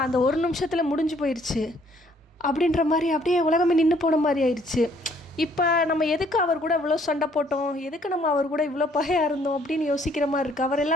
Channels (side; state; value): both; normal; correlation 0.64